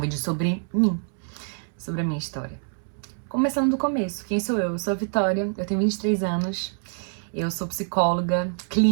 sobre mim, sobre a minha história. Começando do começo, quem sou eu? Eu sou a Vitória, eu tenho 23 anos, eu sou psicóloga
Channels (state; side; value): silent; left; 61 dB below the other